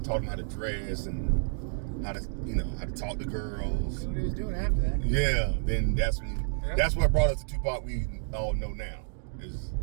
taught him how to dress and how to talk to girls. That's what he was doing after that. Yeah. Then that's what brought us to Tupac we all know now.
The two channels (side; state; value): left; silent; digital silence